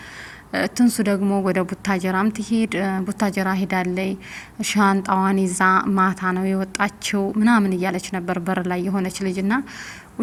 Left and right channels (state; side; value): identical; both; correlation 1.00